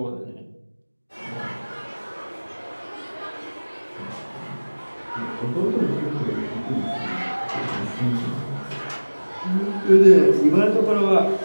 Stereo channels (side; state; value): both; inverted; correlation -1.00